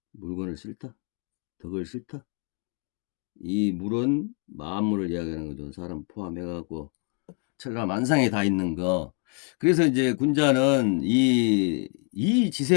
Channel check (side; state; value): right; quieter; 39.7 dB